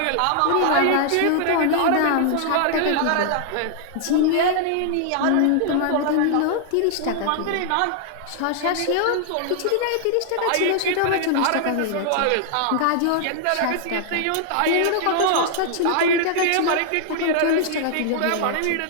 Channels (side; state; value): both; different; correlation 0.00